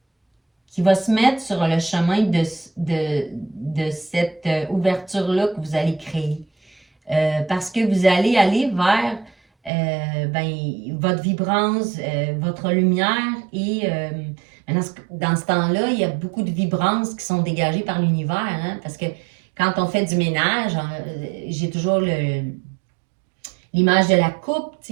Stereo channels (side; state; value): left; drops out; at 9.7 s